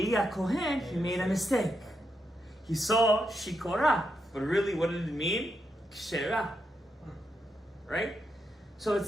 Kohen, he made a mistake. He saw Shikora, but really what did it mean? Kshera. Right? So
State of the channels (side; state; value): both; normal; correlation 0.83